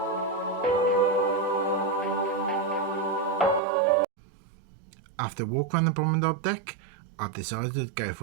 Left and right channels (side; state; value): left; drops out; at 3.6 s